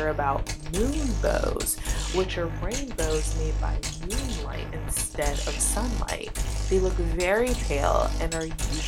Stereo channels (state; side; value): identical; both; correlation 1.00